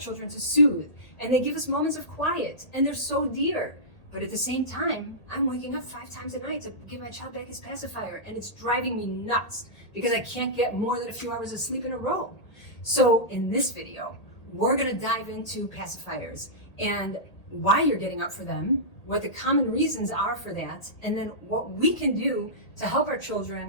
to soothe, and they give us moments of quiet, and they're so dear. But at the same time, I'm waking up 5 times a night to give my child back his pacifier, and it's driving me nuts because I can't get more than a few hours of sleep in a row. So in this video, we're gonna dive into pacifiers and why you're getting up for them, what the common reasons are for that, and then what we can do to help our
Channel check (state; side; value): late; right; 1.8 ms